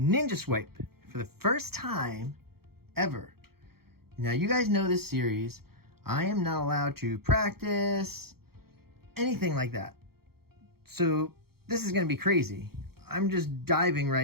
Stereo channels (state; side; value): late; left; 0.95 ms